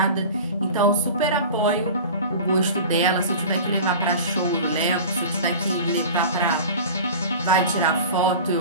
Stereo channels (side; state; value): both; inverted; correlation -0.36